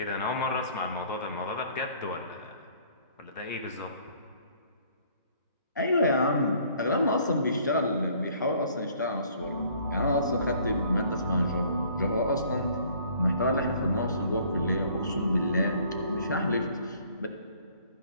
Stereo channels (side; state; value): both; inverted; correlation -0.58